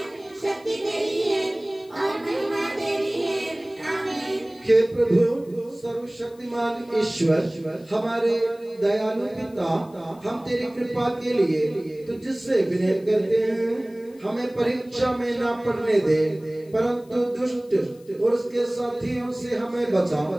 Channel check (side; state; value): left; noise; hiss, 29 dB below the sound